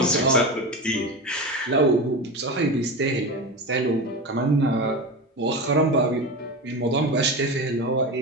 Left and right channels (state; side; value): normal; both; correlation 0.24